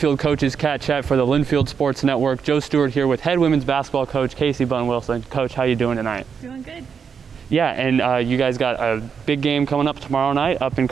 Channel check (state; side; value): quieter; left; 6.6 dB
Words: Coaches CatChat for the Linfield Sports Network. Joe Stuart here with head women's basketball coach Casey Bunn-Wilson. Coach, how you doing tonight? Doing good. Yeah, and you guys got a big game coming up tomorrow night up in